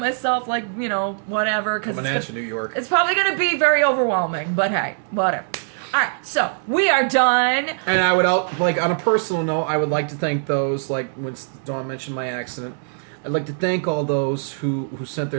like, you know, whatever. Coming at you, New York. It's probably going to be very overwhelming, but hey, whatever. All right, so we are done. And I would, like, on a personal note, I would like to thank those, like, when Dawn mentioned my accident, I'd like to thank all those who sent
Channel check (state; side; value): silent; left; digital silence